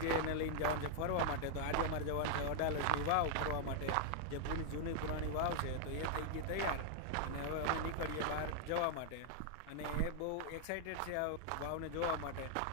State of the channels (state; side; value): different; both; correlation -0.01